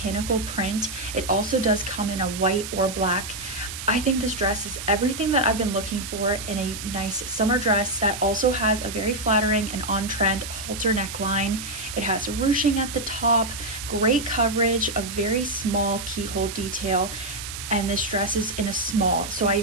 print. It also does come in a white or black. I think this dress is everything that I've been looking for in a nice summer dress that also has a very flattering and on-trend halter neckline. It has ruching at the top, great coverage, a very small keyhole detail, and this dress is in a small, so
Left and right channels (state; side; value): noise; right; hiss, 8 dB below the sound